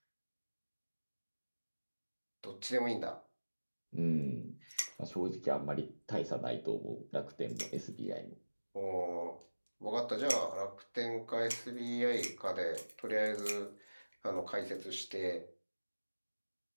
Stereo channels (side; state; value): both; inverted; correlation -1.00